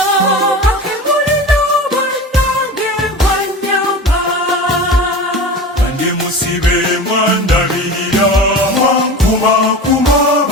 akemulina bannange mwannyamba kandi musibe mwandabirira mwankumakuma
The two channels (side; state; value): both; normal; correlation 0.32